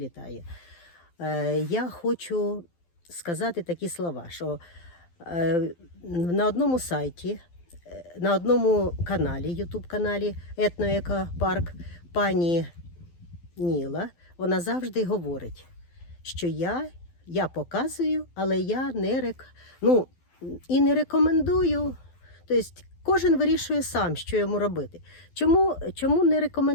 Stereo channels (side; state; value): right; late; 12 ms